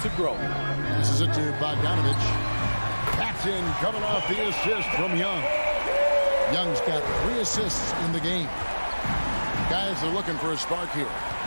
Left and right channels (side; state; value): both; inverted; correlation -1.00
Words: to grow. Passes it to Bogdanovich. That's in, coming off the assist from Young. Young's got 3 assists in the game. Guys are looking for a spark here.